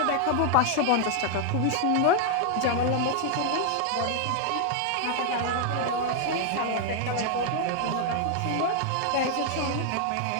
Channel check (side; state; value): both; different; correlation 0.00